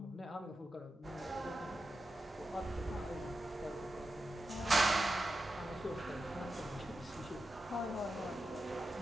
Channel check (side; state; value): both; normal; correlation 0.90